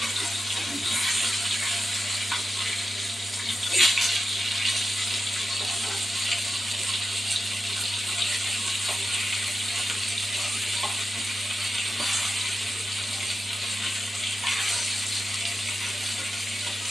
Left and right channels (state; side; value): normal; both; correlation 0.90